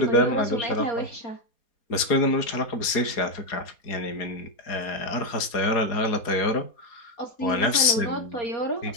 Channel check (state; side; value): late; right; 4.2 ms